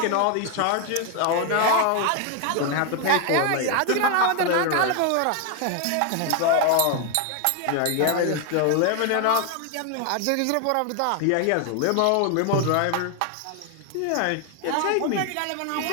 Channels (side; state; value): both; different; correlation 0.00